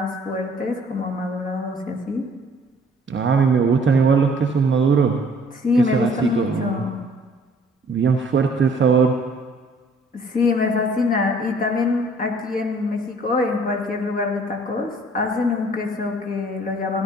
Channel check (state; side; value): normal; both; correlation 0.57